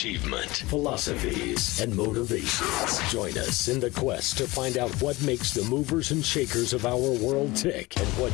philosophies, and motivations. Join us in the quest to find out what makes the movers and shakers of our world tick and what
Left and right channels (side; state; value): right; quieter; 21.2 dB